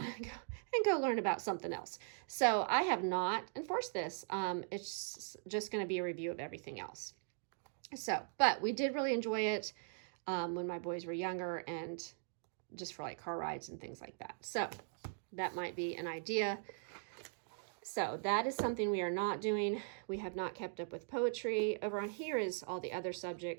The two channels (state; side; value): silent; left; digital silence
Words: and go learn about something else. So I have not enforced this. It's just going to be a review of everything else. So, but we did really enjoy it when my boys were younger, and just for like car rides and things like that. So that might be an idea. So that is something we are not doing. We have not kept up with poetry. Over on here is all the other